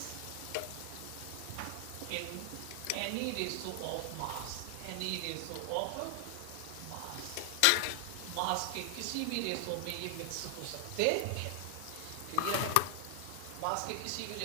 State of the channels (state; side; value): different; both; correlation 0.00